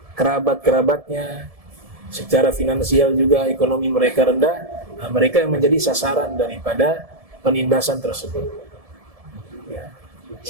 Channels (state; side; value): late; left; 1.7 ms